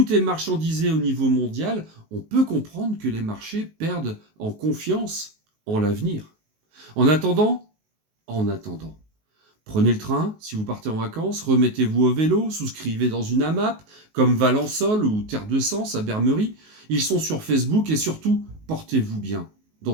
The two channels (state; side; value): late; left; 19 ms